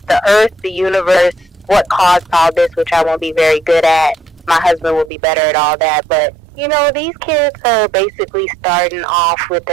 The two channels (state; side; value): drops out; left; at 5.1 s